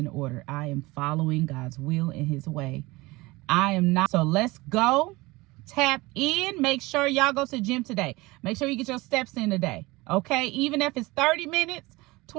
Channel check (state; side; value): quieter; left; 21.8 dB